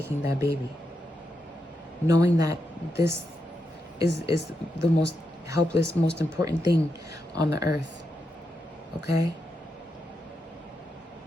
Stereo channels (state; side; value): normal; both; correlation 0.85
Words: that baby, knowing that this is the most helpless, most important thing on the earth. Okay?